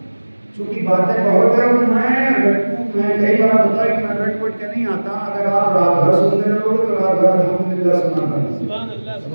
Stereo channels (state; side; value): inverted; both; correlation -1.00